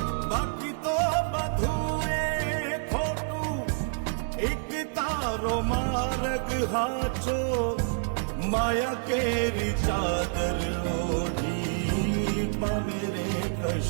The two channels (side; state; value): left; silent; digital silence